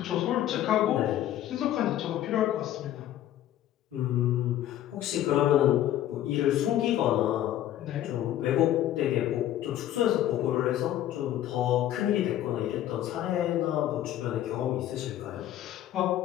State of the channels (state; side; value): quieter; right; 12.5 dB